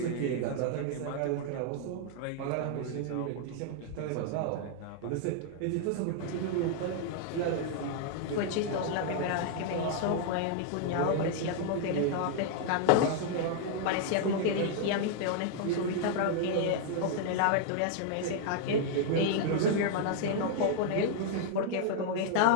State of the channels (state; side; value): different; both; correlation 0.00